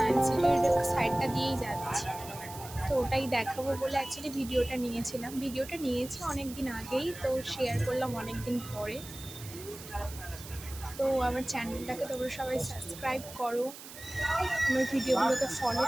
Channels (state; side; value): noise; right; hiss, 14 dB below the sound